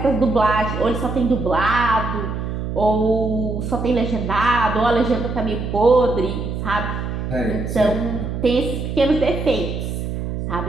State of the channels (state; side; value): noise; right; hum, 4 dB below the sound